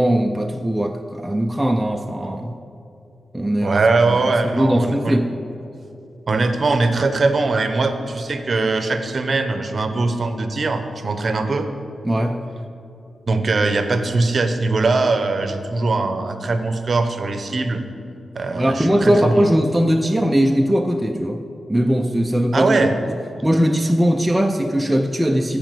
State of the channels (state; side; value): normal; both; correlation 0.94